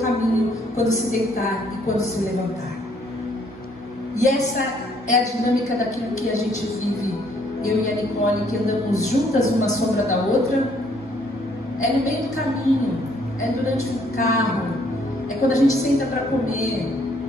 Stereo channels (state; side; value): normal; both; correlation 0.65